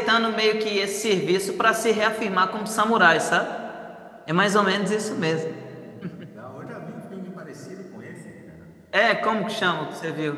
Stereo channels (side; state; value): both; identical; correlation 1.00